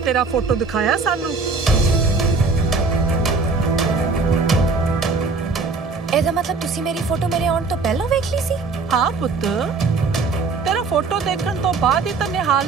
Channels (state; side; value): quieter; left; 4.2 dB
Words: ਤੇਰਾ ਫੋਟੋ ਦਿਖਾਇਆ ਸਾਨੂੰ। ਇਹਦਾ ਮਤਲਬ ਤੁਸੀਂ ਮੇਰੀ ਫੋਟੋ ਮੇਰੇ ਆਉਣ ਤੋਂ ਪਹਿਲਾਂ ਵੇਖ ਲਈ ਸੀ? ਹਾਂ ਪੁੱਤ, ਤੇਰਾ ਫੋਟੋ ਦੇਖਣ ਤੋਂ ਬਾਅਦ ਹੀ ਤਾਂ